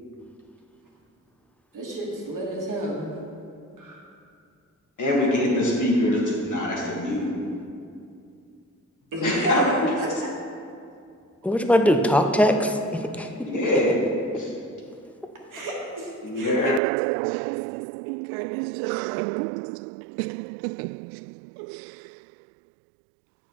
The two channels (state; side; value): drops out; left; at 16.8 s